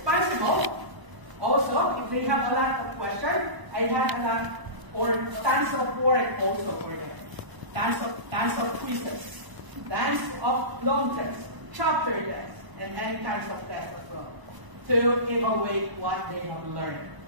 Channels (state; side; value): late; left; 1.0 ms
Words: also, if they have a lot of questions, I have a lot, or tons of work also for them. Tons of quizzes, tons of long tests, chapter tests, and any kinds of tests as well, to evaluate what they have learned